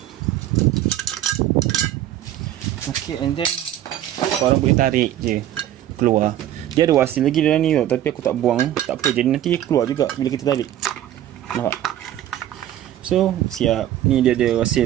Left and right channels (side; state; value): left; quieter; 12.3 dB